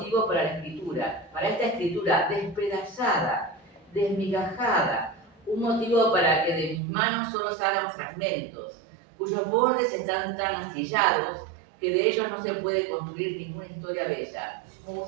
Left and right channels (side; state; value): left; drops out; at 6.8 s